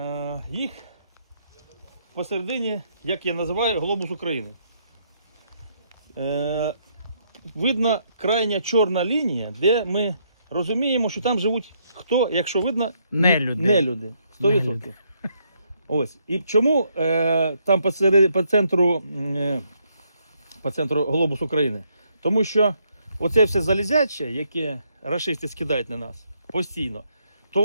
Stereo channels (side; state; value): both; inverted; correlation -0.73